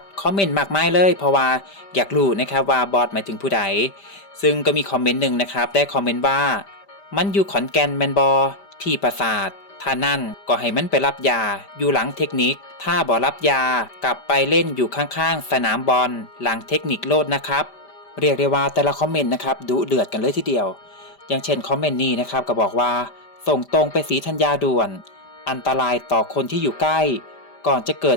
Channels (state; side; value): late; right; 5.1 ms